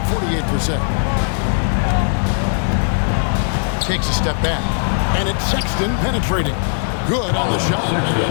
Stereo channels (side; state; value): right; silent; digital silence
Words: 48%. Takes a step back, and it's Sexton penetrating. Good on the shot.